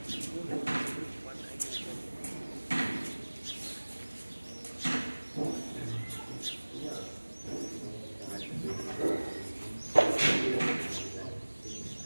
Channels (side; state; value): both; inverted; correlation -1.00